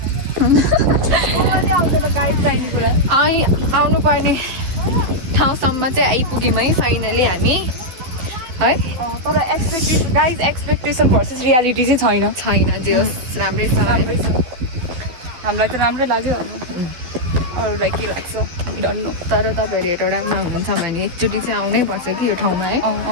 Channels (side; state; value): left; late; 12 ms